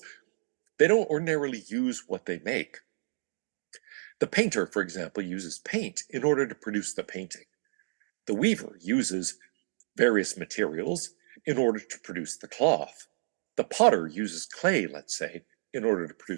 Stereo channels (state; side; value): silent; left; digital silence